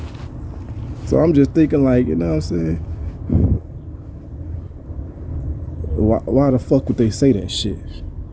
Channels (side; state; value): both; identical; correlation 1.00